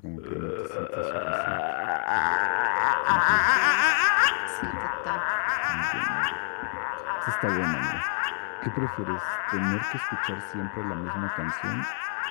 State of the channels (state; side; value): silent; right; 56 dB below the other